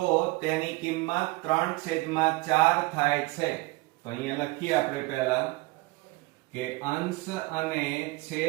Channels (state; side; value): quieter; left; 22.9 dB